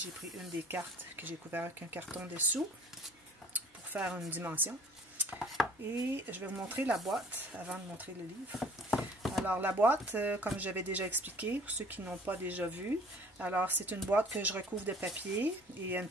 pris une des cartes que j'ai couvert avec un carton dessous pour faire une dimension. Et je vais vous montrer la boîte avant de montrer le livre. Alors, la boîte, comme j'avais déjà expliqué, pour ceux qui n'ont pas déjà vu, alors c'est une boîte que je recouvre de papier et il y a une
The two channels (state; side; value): normal; both; correlation 0.52